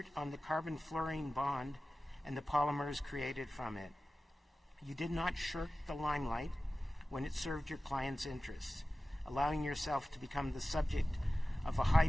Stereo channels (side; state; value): both; normal; correlation 0.96